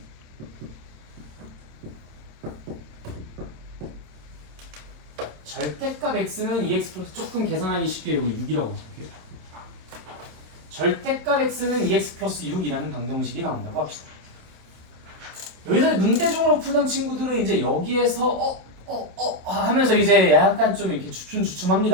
절대값 x는 2x 플러스 조금 계산하기 쉽게 이거 6이라고 볼게요. 절대값 x는 2x 플러스 6이라는 방정식이 나온다고 합시다. 여기서 눈대중으로 풀던 친구들은 이제 여기에서 하면서 이제 약간 좀 이렇게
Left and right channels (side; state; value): left; late; 27 ms